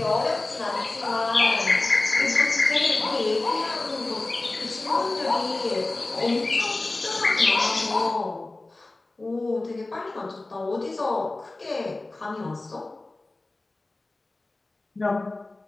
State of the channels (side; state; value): right; quieter; 3.0 dB